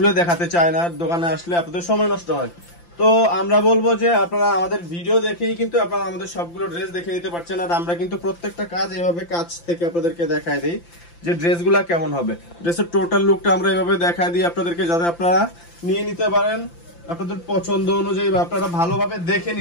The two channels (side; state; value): right; late; 5.8 ms